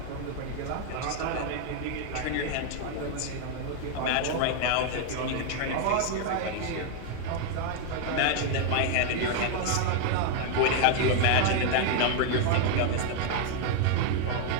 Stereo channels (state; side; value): different; both; correlation 0.00